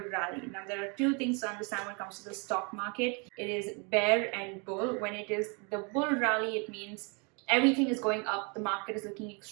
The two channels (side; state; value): left; quieter; 33.5 dB